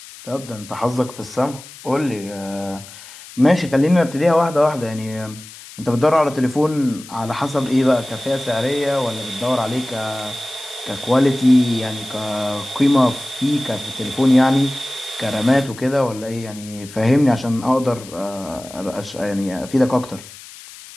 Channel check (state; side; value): noise; left; hiss, 17 dB below the sound